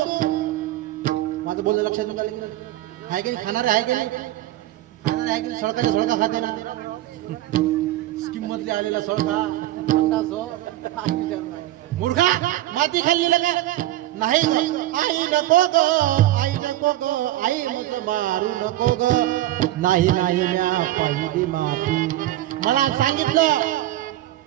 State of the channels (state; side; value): quieter; left; 15.1 dB